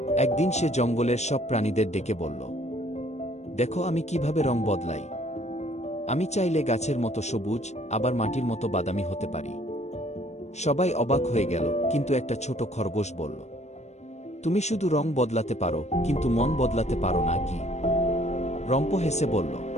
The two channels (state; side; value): late; right; 0.32 ms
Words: একদিন সে জঙ্গলের সব প্রাণীদের ডেকে বলল, দেখো আমি কিভাবে রং বদলাই। আমি চাইলে গাছের মতো সবুজ, আবার মাটির মতো বাদামি হতে পারি। সবাই অবাক হয়ে গেল, কিন্তু একটা ছোট খরগোশ বলল, তুমি শুধু রং বদলাতে পারো, কিন্তু মন বদলাতে পারো না কি? রম্প হেসে বলল,